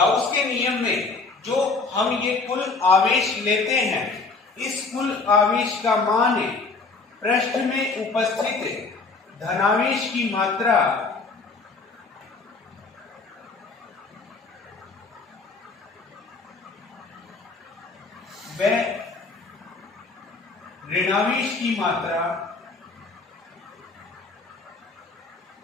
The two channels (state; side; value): quieter; right; 4.0 dB